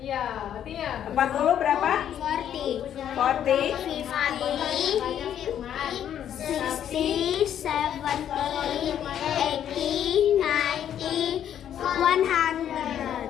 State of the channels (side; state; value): right; quieter; 9.9 dB